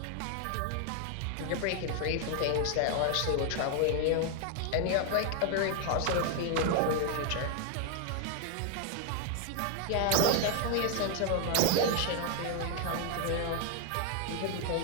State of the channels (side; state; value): both; different; correlation 0.00